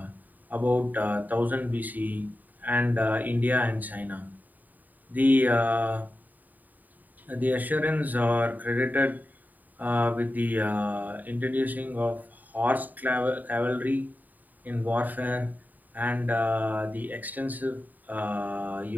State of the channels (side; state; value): left; late; 0.084 ms